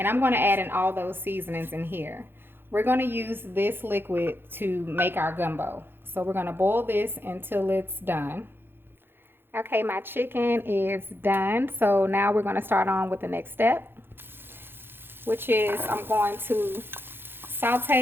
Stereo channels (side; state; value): left; late; 0.10 ms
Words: I'm going to add in all those seasonings in here. We're going to use this liquid to make our gumbo. So we're going to boil this until it's done. Okay, my chicken is done. So now we're going to start on with the next step, which is I'm going to